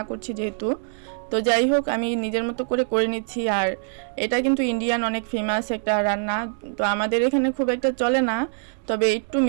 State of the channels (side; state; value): left; silent; digital silence